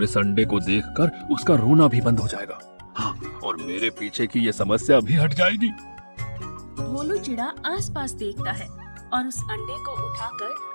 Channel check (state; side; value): inverted; both; correlation -1.00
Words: इस अंडे को देखकर उसका रोना भी बंद हो जाएगा। हाँ, और मेरे पीछे की ये समस्या भी हट जाएगी। भोलू चिड़ा आसपास देखता है और उस अंडे को